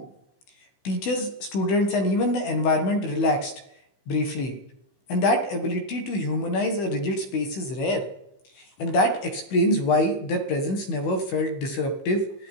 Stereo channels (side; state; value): right; late; 15 ms